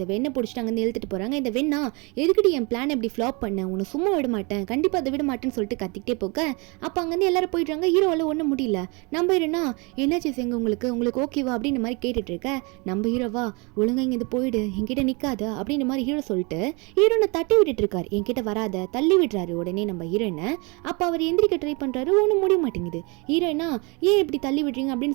வெண்ணை பிடிச்சிட்டு அங்கேருந்து இழுத்துட்டு போகிறாங்க. இந்த வெண்ணா எதுக்கிட்டு என் பிளான் எப்படி ஃப்ளாப் பண்ண, உன்னை சும்மா விட மாட்டேன், கண்டிப்பாக அதை விட மாட்டேன்னு சொல்லிட்டு கத்திக்கிட்டே போக அப்போ அங்கேருந்து எல்லாரும் போயிடுறாங்க. ஹீரோவால் ஒன்றும் முடியல. நம்ம ஹீரோனா என்னாச்சு செங்க உங்களுக்கு ஓகேவா அப்படின்ற மாதிரி கேட்டுட்டு இருக்க. நம்ம ஹீரோவா ஒழுங்கா இங்கே போயிடு என்கிட்ட நிற்காத அப்படின்ற மாதிரி ஹீரோ சொல்லிட்டு ஹீரோனை தட்டி விட்டுட்டு இருக்காரு, என்கிட்ட வராத தள்ளி விடுறாரு. உடனே நம்ம ஹீரோயினை அப்போ அவர் எந்திரிக்க ட்ரை பண்ணுறாரு, ஒன்றும் முடிய மாட்டேங்குது. ஹீரோயினா ஏன் இப்படி தள்ளி விடுறீங்க அப்படின்னு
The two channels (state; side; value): quieter; left; 29.5 dB